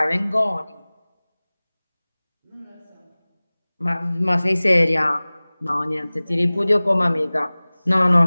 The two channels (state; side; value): inverted; both; correlation -0.99